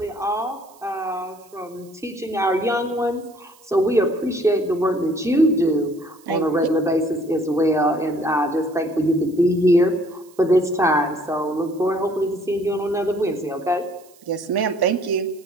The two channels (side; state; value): right; noise; hiss, 27 dB below the sound